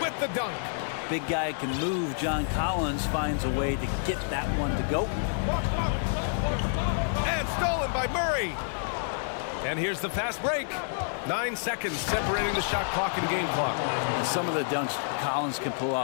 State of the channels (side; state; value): right; silent; 59 dB below the other